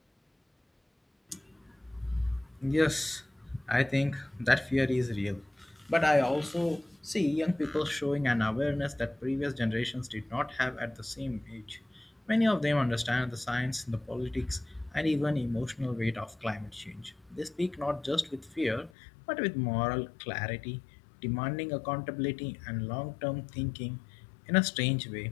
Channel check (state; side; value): drops out; right; at 18.9 s